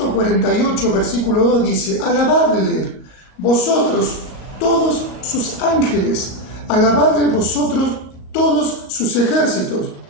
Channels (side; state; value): right; late; 38 ms